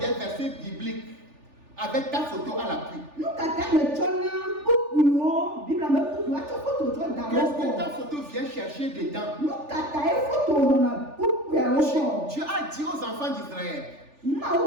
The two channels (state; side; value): late; left; 3.4 ms